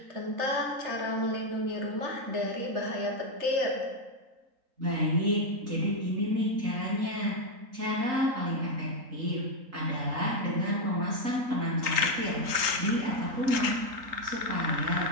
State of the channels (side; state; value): left; late; 3.8 ms